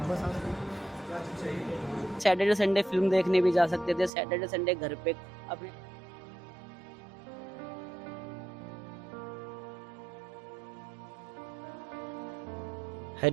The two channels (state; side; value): drops out; left; at 4.1 s